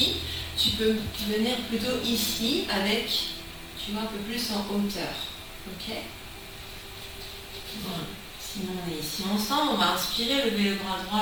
tu peux venir plutôt ici avec, tu vois, un peu plus en hauteur. Ok? Voilà. Sinon on est ici ensemble, on va inspirer, lever le bras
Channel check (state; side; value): identical; both; correlation 1.00